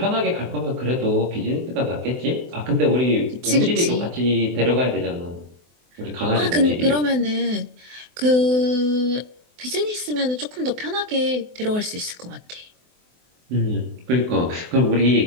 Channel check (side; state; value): left; late; 24 ms